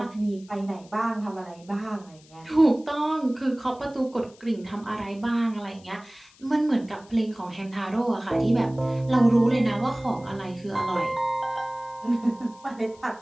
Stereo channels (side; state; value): left; noise; hiss, 26 dB below the sound